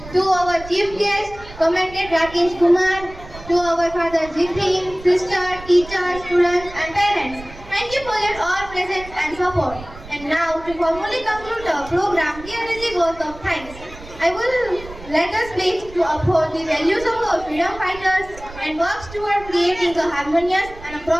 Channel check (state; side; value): noise; right; rumble, 16 dB below the sound